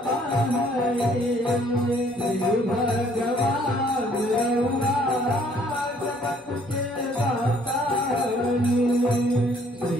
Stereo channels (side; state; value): both; normal; correlation 0.62